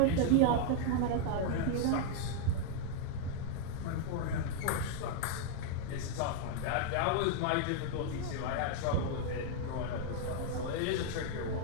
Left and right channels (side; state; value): both; different; correlation 0.00